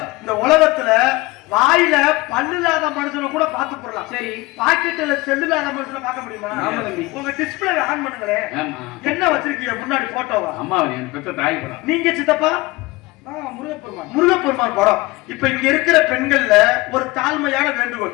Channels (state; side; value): quieter; right; 21.6 dB